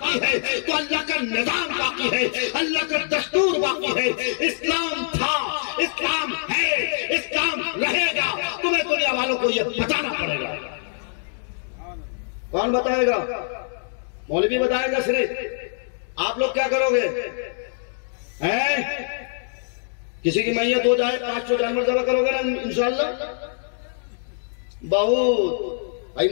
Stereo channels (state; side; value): silent; right; digital silence